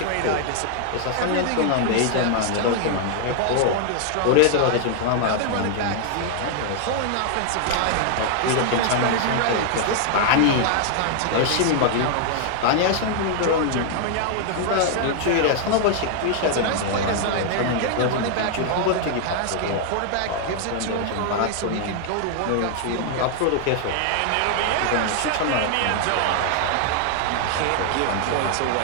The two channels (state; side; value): different; both; correlation 0.00